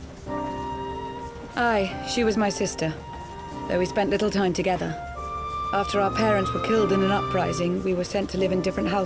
Aye, she was my sister, though we spent little time together. After our parents were killed in an uprising, we were sent to live in different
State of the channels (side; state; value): both; identical; correlation 1.00